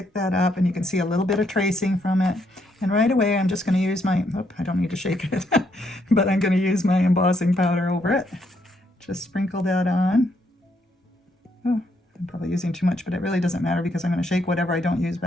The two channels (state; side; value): normal; both; correlation 0.74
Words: that up, and you can see a little bit of tracing from it. And right away, I'm just going to use my, I don't need to shake it, but I'm going to use my embossing powder over it. Just sprinkle that on. Oh, I'm probably using too much, but it really doesn't matter because I'm going to shake whatever I don't use